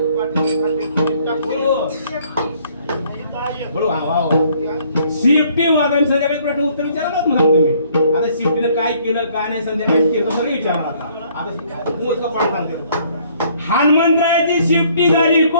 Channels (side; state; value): both; inverted; correlation -0.62